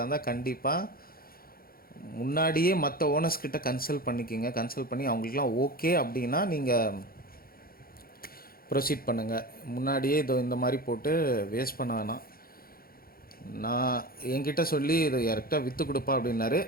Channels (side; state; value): right; late; 0.43 ms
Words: இருந்தால் கண்டிப்பாக முன்னாடியே மற்ற ஓனர்ஸ் கிட்ட கன்சல்ட் பண்ணிக்கிங்க. கன்சல்ட் பண்ணி அவங்களுக்குலாம் ஓகே அப்படின்னா நீங்கள் ப்ரொசீட் பண்ணுங்கள். முன்னாடியே இந்த மாதிரி போட்டு வேஸ்ட் பண்ண வேணாம். நான் என்கிட்ட சொல்லி இதை யார்கிட்ட விற்று கொடுப்பா அப்படின்னாரு.